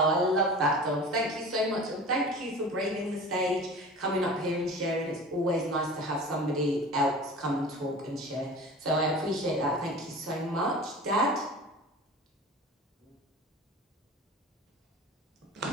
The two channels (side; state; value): both; normal; correlation 0.37